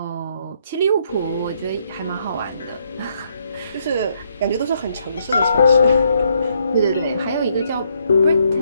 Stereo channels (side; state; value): both; inverted; correlation -0.72